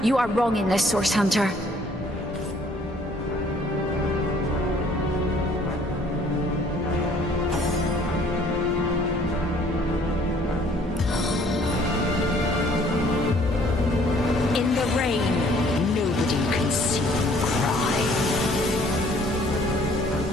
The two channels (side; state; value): both; normal; correlation 0.59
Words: you are wrong in this, Source Hunter.